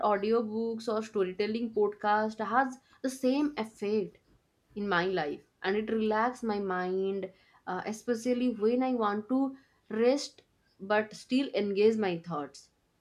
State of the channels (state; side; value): identical; both; correlation 1.00